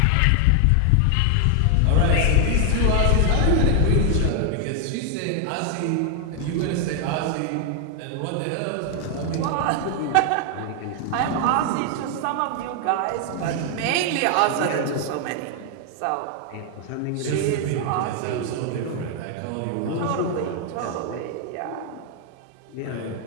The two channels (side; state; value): both; different; correlation 0.00